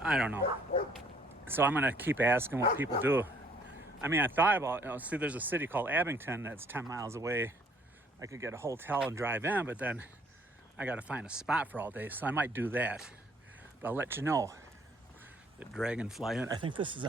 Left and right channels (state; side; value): normal; both; correlation 0.62